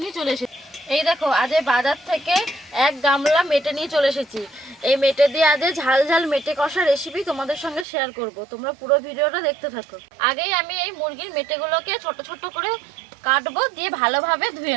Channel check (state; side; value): drops out; left; at 7.9 s